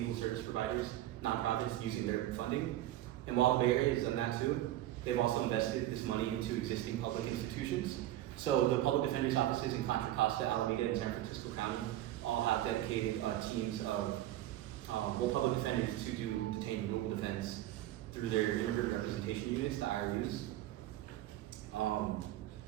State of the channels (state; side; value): quieter; left; 14.2 dB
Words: service providers, nonprofits, using their funding. And while the Bay Area has done that too, they've also invested this money into existing public institutions. So the public defender's offices in Contra Costa, Alameda, and San Francisco County all have dedicated teams of public defenders to do detained legal defense through their immigrant representation units, the IRUs.